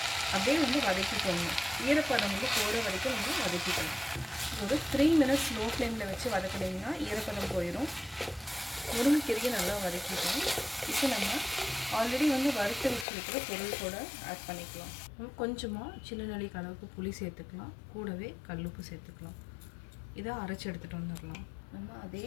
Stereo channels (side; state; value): right; drops out; at 13.1 s